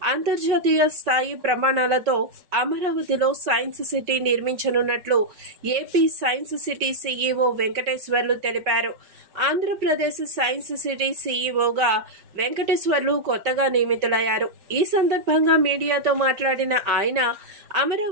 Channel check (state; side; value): late; left; 5.4 ms